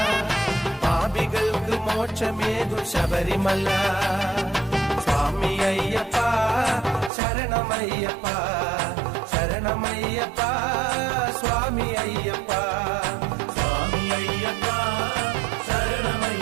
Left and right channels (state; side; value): drops out; left; at 7.1 s